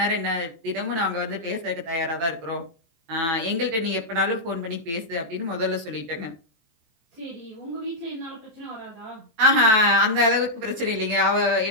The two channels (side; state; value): left; late; 18 ms